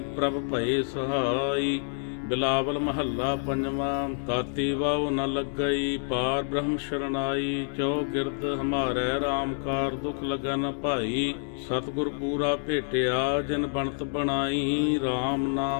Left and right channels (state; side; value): silent; right; digital silence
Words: ਪ੍ਰਭ ਭਏ ਸਹਾਈ। ਬਿਲਾਵਲ ਮਹੱਲਾ ਪੰਜਵਾਂ। ਤਾਤੀ ਵਾਉ ਨ ਲੱਗਈ ਪਾਰ ਬ੍ਰਹਮ ਸ਼ਰਨਾਈ, ਜੋ ਗਿਰਦ ਹਮਾਰੇ ਰਾਮ ਕਾਰ ਦੁਖ ਲੱਗੈ ਨ ਭਾਈ। ਸਤਿਗੁਰ ਪੂਰਾ ਭੇਟਿਆ ਜਿਨ ਬਣਤ ਬਣਾਈ, ਰਾਮ